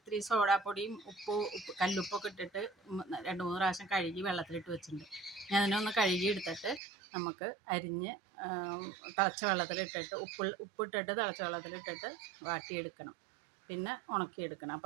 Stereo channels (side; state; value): left; drops out; at 6.8 s